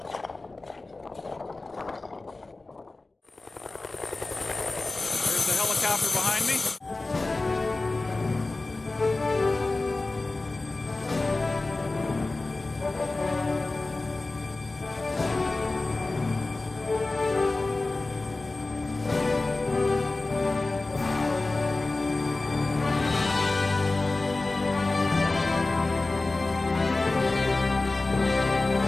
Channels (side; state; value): right; quieter; 3.2 dB